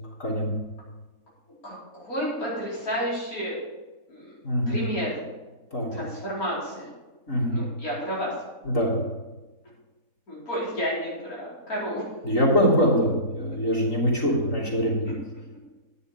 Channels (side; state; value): right; late; 3.8 ms